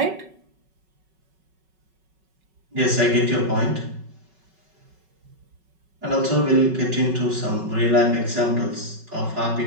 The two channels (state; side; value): late; left; 5.3 ms